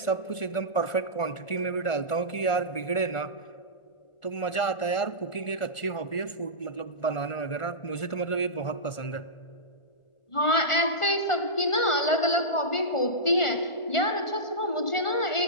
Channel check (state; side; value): late; right; 1.4 ms